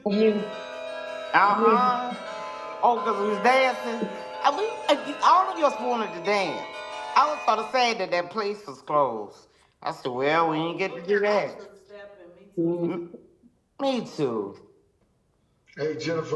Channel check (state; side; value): identical; both; correlation 1.00